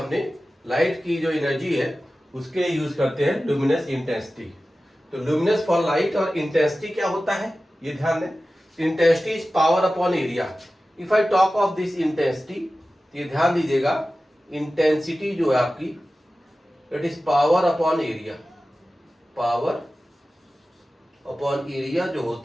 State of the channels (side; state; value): both; normal; correlation 0.95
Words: लाइट की जो एनर्जी है उसके लिए यूज करते हैं ल्यूमिनस इंटेंसिटी। तो ल्यूमिनस फॉर लाइट और इंटेंसिटी क्या होता है ये ध्यान दें। Intensity is power upon area. If I talk of this intensity, ये ध्यान दीजिएगा, इंटेंसिटी जो है आपकी, it is power upon area. Power upon area जो